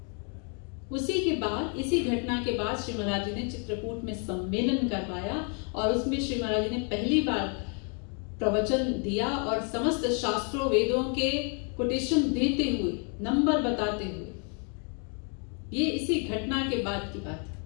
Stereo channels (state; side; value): quieter; right; 39.0 dB